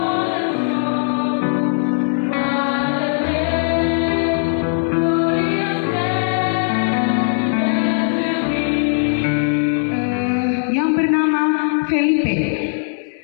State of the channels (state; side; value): silent; right; 63 dB below the other